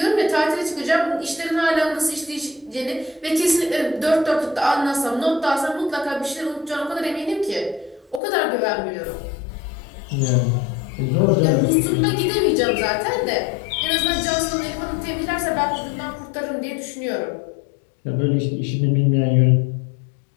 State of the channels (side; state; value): right; drops out; at 8.2 s